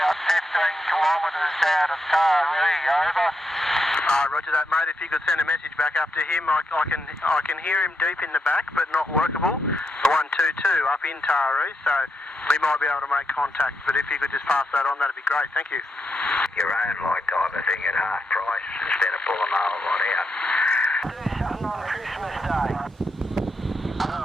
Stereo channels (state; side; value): normal; both; correlation 0.82